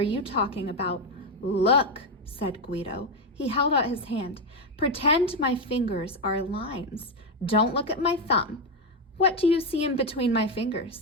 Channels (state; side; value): normal; both; correlation 0.07